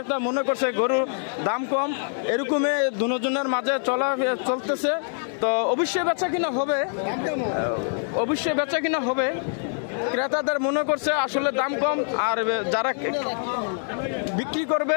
মনে করছে গরুর দাম কম। এরকমই দুজনের মাঝে চলতেছে। তো অবশ্যই বেচা কিনা হবে। ক্রেতাদের মনে করছে আসলে দাম কম, আর যারা বিক্রি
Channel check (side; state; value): right; silent; digital silence